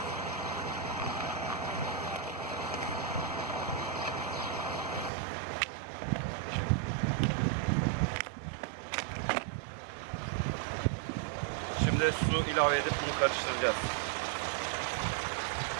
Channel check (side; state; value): left; drops out; at 5.1 s